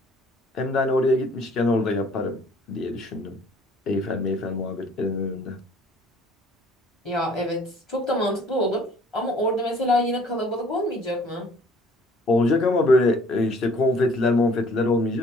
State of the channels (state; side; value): normal; both; correlation 0.56